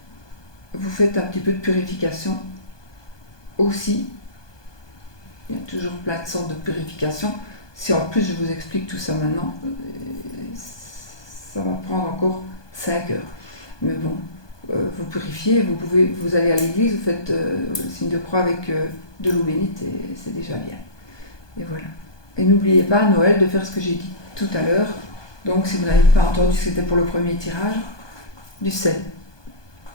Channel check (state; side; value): late; right; 1.2 ms